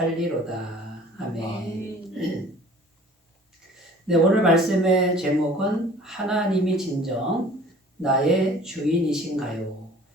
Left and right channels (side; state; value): both; normal; correlation 0.49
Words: 아멘. 네, 오늘 말씀의 제목은 하나님이 진정 나의 주인이신가요?